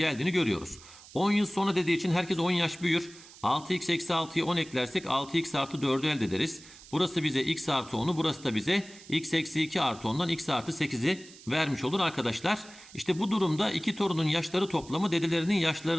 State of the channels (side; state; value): right; noise; hiss, 20 dB below the sound